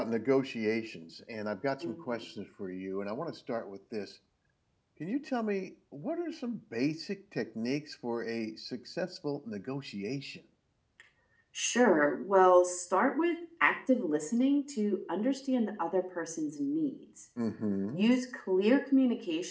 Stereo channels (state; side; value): identical; both; correlation 1.00